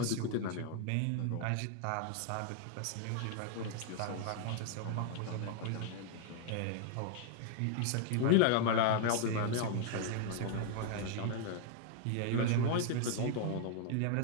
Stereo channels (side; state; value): both; different; correlation 0.00